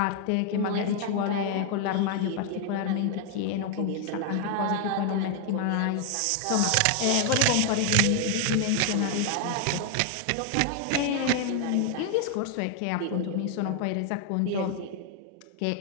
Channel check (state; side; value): different; both; correlation 0.00